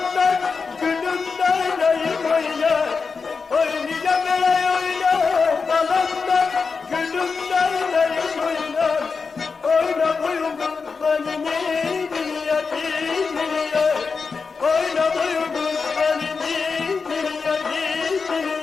gülümden ayım oynar Oynayacağım bile oynar Kalanlar gülümden ayım oynar Oyna boyun kurbanı niye niye Oyna boyun kurbanı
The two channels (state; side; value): quieter; right; 4.9 dB